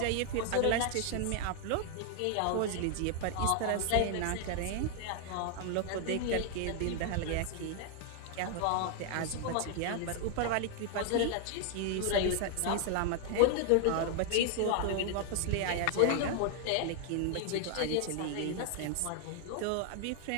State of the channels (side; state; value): both; different; correlation 0.00